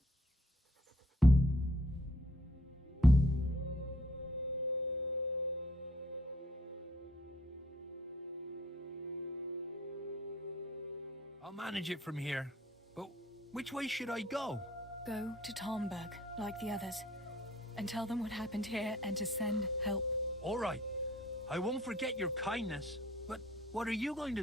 I'll manage it from here. But which way should I go? Go to Talmberg, like the others, and tell them what happened here and to send help. All right. I won't forget your kindness. But what are you going to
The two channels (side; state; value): both; normal; correlation 0.61